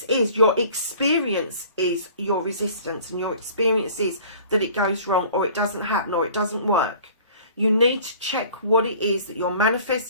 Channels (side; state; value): both; inverted; correlation -0.49